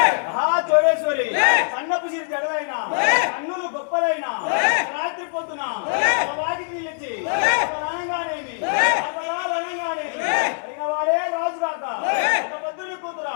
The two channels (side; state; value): right; silent; digital silence